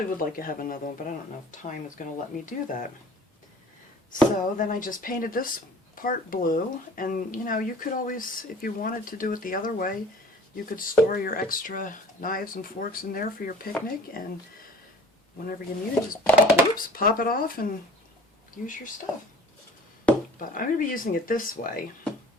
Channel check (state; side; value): normal; both; correlation 0.46